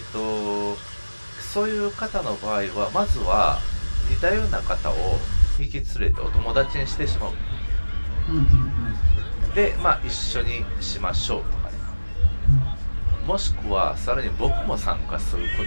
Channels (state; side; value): inverted; both; correlation -1.00